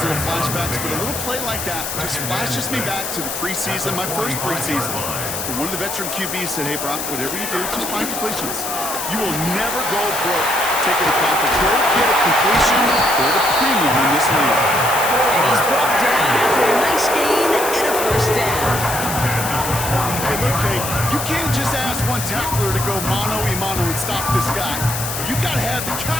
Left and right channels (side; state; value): left; noise; hiss, 5 dB below the sound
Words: little flashbacks, but a little play like that just flashes me back to the preseason, my first preseason. And one of the veteran QBs said, hey, Brock, whatever you do, just find completions. You will never go broke taking a profit. Go get a completion or the premium in this league. And he's brought down after a nice gain and a 1st down. Hey, look, Kate, you can't just ask one tackler to go mano-a-mano and stop this guy. You got to have the